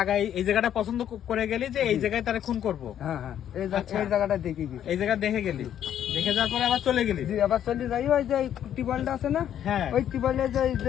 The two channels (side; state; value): right; quieter; 10.3 dB